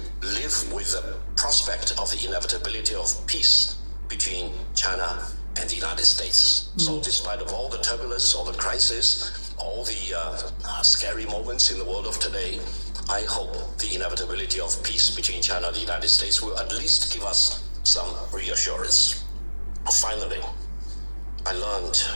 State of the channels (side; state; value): both; inverted; correlation -1.00